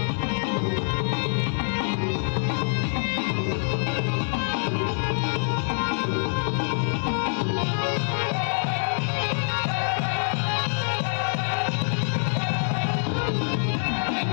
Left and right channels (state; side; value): silent; right; 61 dB below the other